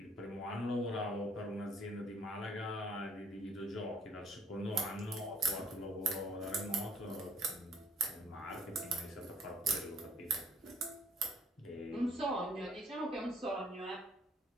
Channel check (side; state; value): both; normal; correlation 0.59